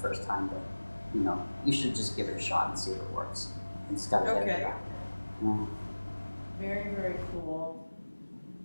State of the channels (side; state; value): both; inverted; correlation -1.00